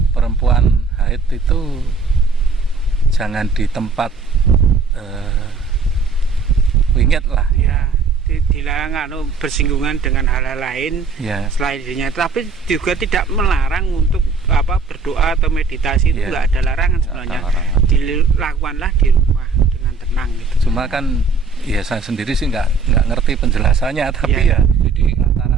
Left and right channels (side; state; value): left; quieter; 4.4 dB